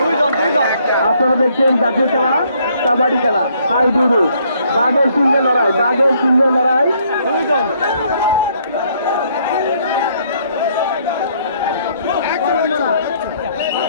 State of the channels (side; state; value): both; inverted; correlation -0.67